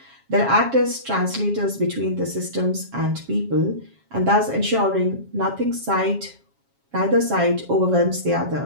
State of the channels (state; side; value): late; left; 7.3 ms